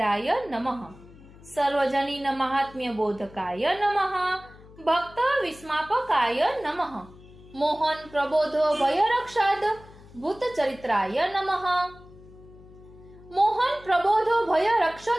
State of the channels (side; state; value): left; noise; hum, 22 dB below the sound